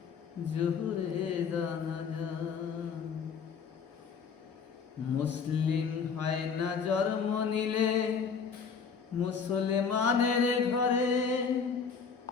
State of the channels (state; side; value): quieter; right; 6.0 dB